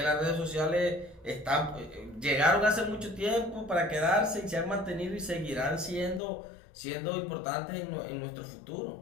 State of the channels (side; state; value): right; drops out; at 6.2 s